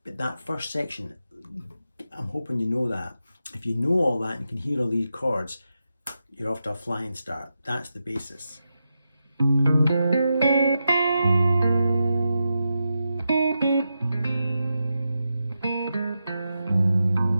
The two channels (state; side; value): inverted; both; correlation -0.88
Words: But that first section, I'm hoping you know that. If you know all that and you can hear all these chords, you're off to a flying start. That's the basis.